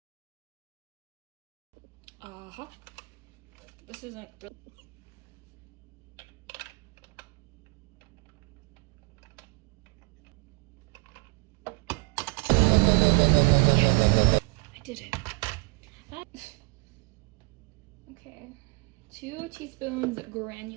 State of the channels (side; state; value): left; quieter; 27.7 dB